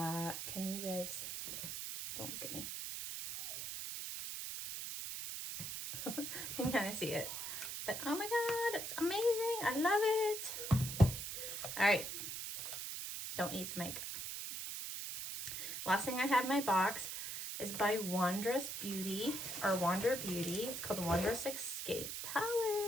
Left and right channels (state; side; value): noise; right; hiss, 5 dB below the sound